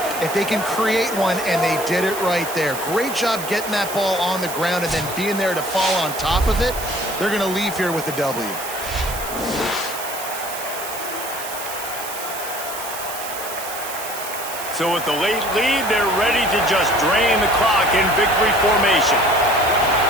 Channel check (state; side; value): noise; right; hiss, 9 dB below the sound